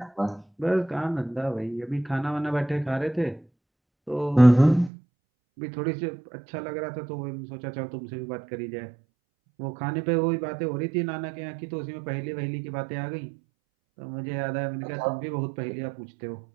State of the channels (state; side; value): drops out; left; at 4.9 s